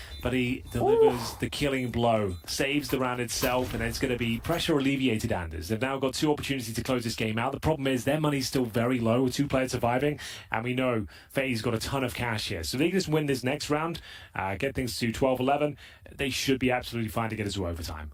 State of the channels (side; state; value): both; identical; correlation 1.00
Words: but he delivers the killing blow, saves the round itself, and it's going to be pressure alleviated, Anders. They've now got 2 opportunities to close this game out. The problem is their money's still very low with 2 players surviving, and we know FaZe got a ton of cash here. So if they can just win this next round, get things to 12-11, they should be absolutely fine to get us to overtime.